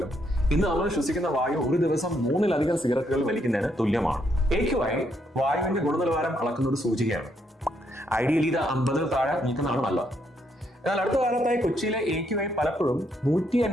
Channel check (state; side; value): normal; both; correlation 0.75